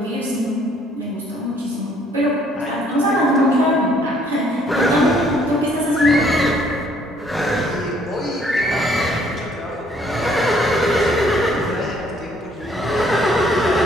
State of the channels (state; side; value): normal; both; correlation 0.63